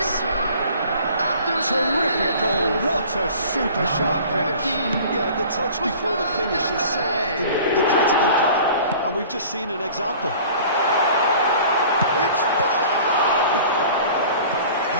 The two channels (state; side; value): inverted; both; correlation -0.46